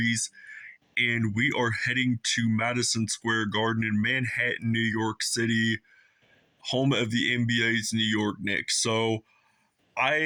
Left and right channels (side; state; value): both; identical; correlation 1.00